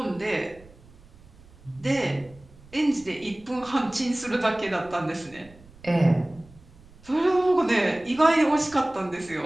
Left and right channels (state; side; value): noise; right; rumble, 24 dB below the sound